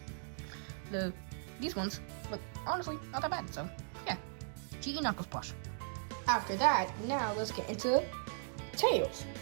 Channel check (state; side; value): silent; left; digital silence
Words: these ones look honestly not that bad. So yeah, GE Knuckles plush. After that, now let's get into Tails.